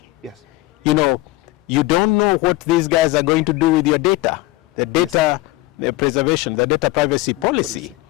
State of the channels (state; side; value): quieter; right; 19.1 dB